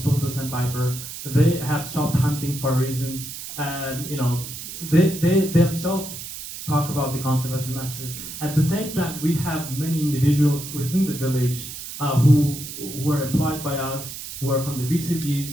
sandpiper. They have stopped hunting for reasons, and they themselves talk about the conservation messages. At the same time, we have many individuals within the village who were employed by us, who are from the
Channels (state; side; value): noise; right; hiss, 10 dB below the sound